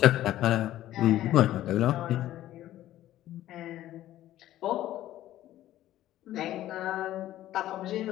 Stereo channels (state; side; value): quieter; right; 13.8 dB